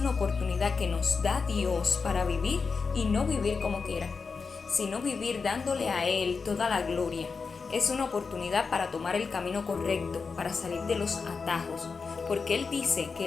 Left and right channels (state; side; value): quieter; right; 4.9 dB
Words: oportunidad que nos da Dios para vivir y no vivir como quiera, sino vivir dándole a Él toda la gloria. Es una oportunidad para tomar el camino correcto, para salir de los atajos, porque Él dice que